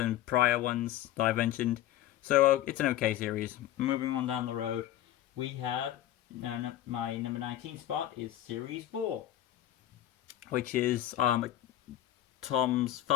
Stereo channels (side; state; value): right; quieter; 13.1 dB